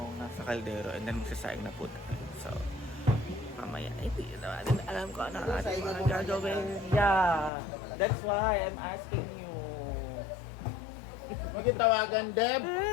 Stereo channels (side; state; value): right; drops out; at 7.5 s